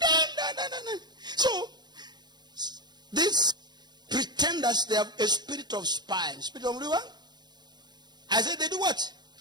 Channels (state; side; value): late; left; 0.21 ms